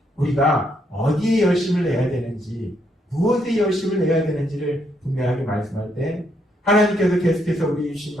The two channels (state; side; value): normal; both; correlation 0.75